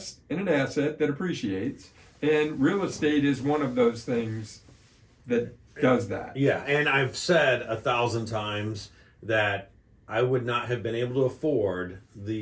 in an asset that appreciates. And real estate is one of those things that does that. Yeah, and I've said 1,000 times that I would not have been able to afford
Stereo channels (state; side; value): identical; both; correlation 1.00